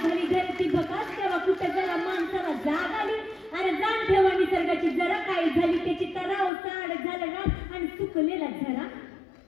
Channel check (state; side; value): drops out; right; at 6.5 s